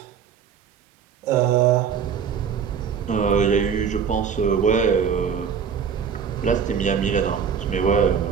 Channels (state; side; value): quieter; left; 7.1 dB